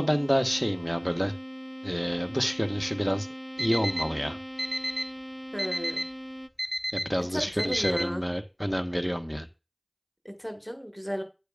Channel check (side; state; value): both; identical; correlation 1.00